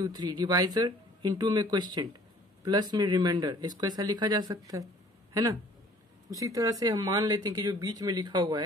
3 डिवाइजर, इंटू में क्वेश्चन, प्लस में रिमाइंडर, इसको ऐसा लिखा जा सकता है ना। उसी तरह से हम मान लेते हैं कि जो बीच में लिखा हुआ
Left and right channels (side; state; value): both; normal; correlation 0.53